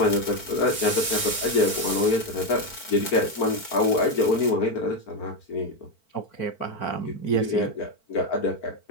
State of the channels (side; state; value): right; late; 4.5 ms